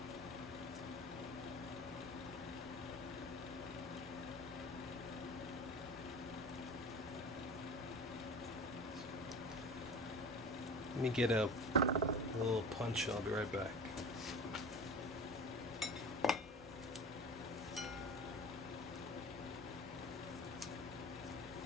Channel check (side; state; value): both; normal; correlation 0.35